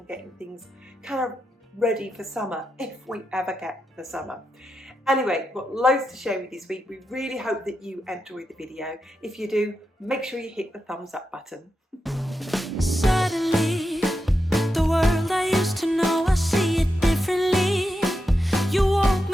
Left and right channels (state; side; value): normal; both; correlation 0.87